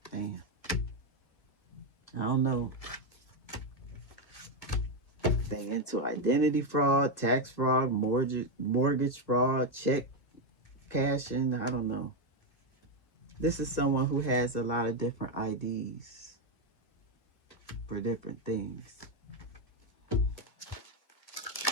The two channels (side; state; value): right; late; 1.6 ms